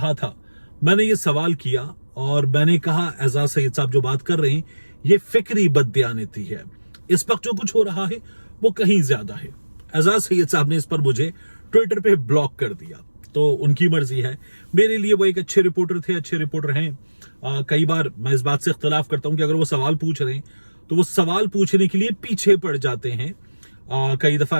था? मैंने ये सवाल किया और मैंने कहा एजाज सैयद साहब जो बात कर रहे हैं ये फिक्री बददियानती है, इस वक्त जो कुछ हो रहा है वो कहीं ज्यादा है। एजाज सैयद साहब ने इस पर मुझे ट्विटर पे ब्लॉक कर दिया, तो उनकी मर्जी है। मेरे लिए वो एक अच्छे रिपोर्टर थे, अच्छे रिपोर्टर हैं। कई बार मैं इस बात से इख्तलाफ करता हूं कि अगर वो सवाल पूछ रहे हैं तो वो सवाल पूछने के लिए पीछे पड़ जाते हैं। कई दफा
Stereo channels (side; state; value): both; inverted; correlation -1.00